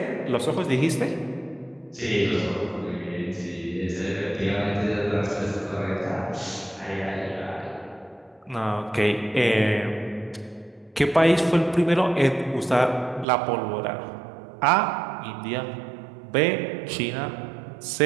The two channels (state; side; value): drops out; left; at 13.2 s